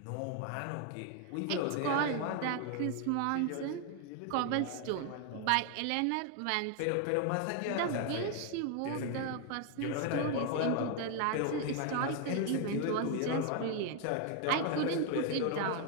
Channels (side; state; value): both; different; correlation 0.00